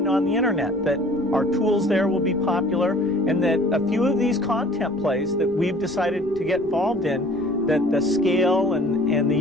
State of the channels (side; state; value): right; noise; rumble, 21 dB below the sound